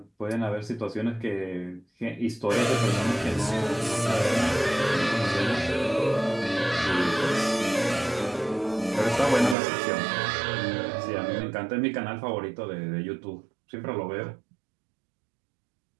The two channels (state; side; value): drops out; left; at 9.6 s